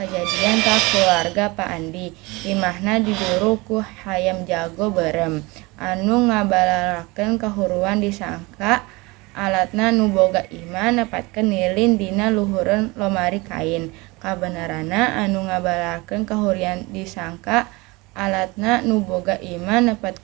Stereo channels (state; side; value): quieter; left; 24.1 dB